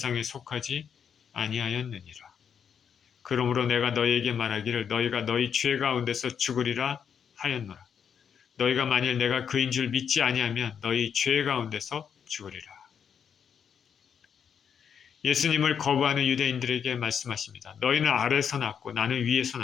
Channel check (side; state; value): right; quieter; 7.6 dB